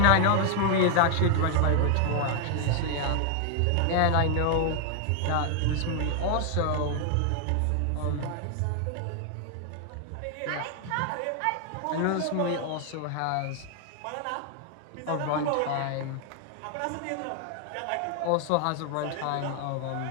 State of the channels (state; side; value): different; both; correlation 0.00